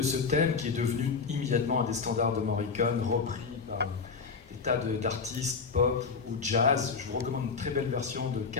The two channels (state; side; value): quieter; right; 5.1 dB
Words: ce thème qui est devenu immédiatement un des standards de Morricone, repris par des tas d'artistes pop ou jazz. Je vous recommande une très belle version de